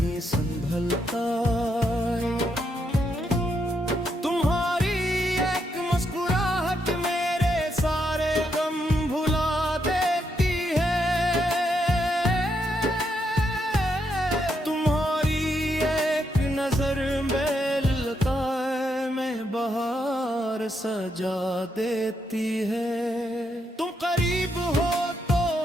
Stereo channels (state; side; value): normal; both; correlation 0.79